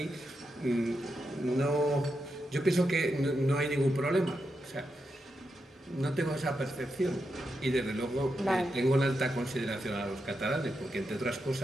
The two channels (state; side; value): normal; both; correlation 0.86